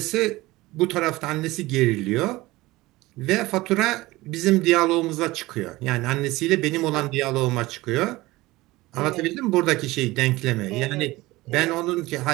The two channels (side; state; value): left; quieter; 19.5 dB